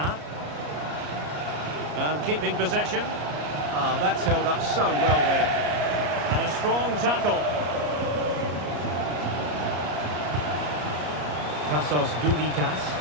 And keeping possession. That's held up so well there. And a strong tackle. Tassos Doudikas.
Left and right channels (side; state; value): left; late; 34 ms